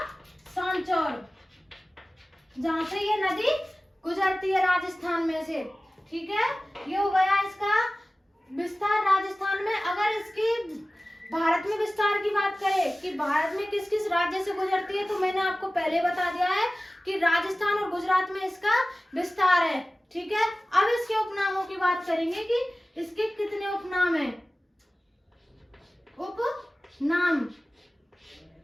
सांचौर, जहां से ये नदी गुजरती है राजस्थान में से, ठीक है। ये हो गया इसका विस्तार राजस्थान में। अगर इसकी भारत में विस्तार की बात करें कि भारत में किस किस राज्य से गुजरती है, तो मैंने आपको पहले बता दिया है कि राजस्थान और गुजरात में इसका विस्तार है, ठीक है। अब इसके उपनामों की बात करेंगे कि इसके कितने उपनाम हैं, उपनाम,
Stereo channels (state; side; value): normal; both; correlation 0.97